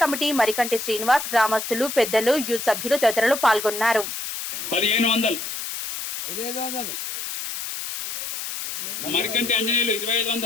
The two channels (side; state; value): left; noise; hiss, 6 dB below the sound